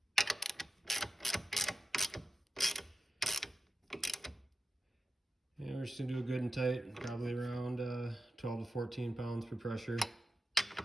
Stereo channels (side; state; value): both; normal; correlation 0.93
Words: And we're just gonna do it good and tight, probably around 12 to 14 pounds per pressure.